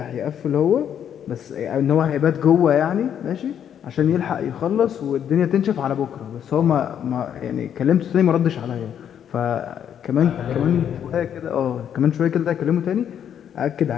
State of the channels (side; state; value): right; quieter; 9.1 dB